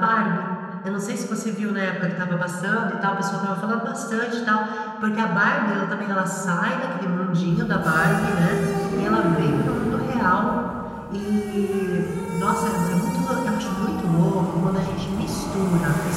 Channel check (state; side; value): identical; both; correlation 1.00